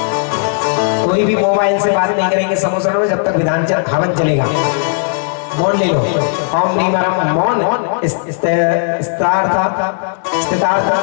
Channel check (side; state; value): right; silent; digital silence